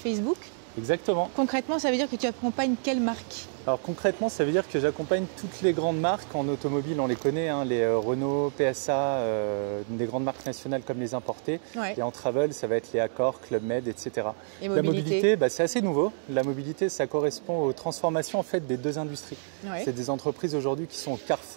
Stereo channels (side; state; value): left; silent; digital silence